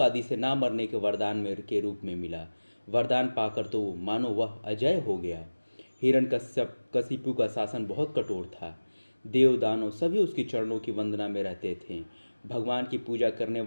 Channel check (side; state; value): both; inverted; correlation -1.00